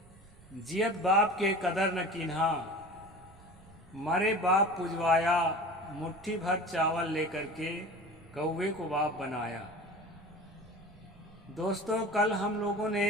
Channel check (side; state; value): right; noise; rumble, 24 dB below the sound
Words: जियत बाप के कदर न कीन्हा, मरे बाप पुजवाया। मुट्ठी भर चावल लेकर के कौवे को बाप बनाया। दोस्तों, कल हम लोगों ने